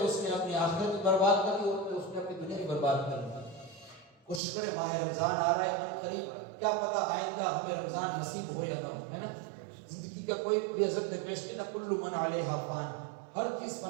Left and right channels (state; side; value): drops out; left; at 4.4 s